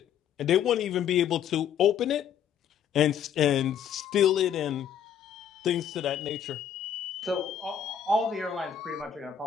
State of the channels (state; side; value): quieter; right; 8.7 dB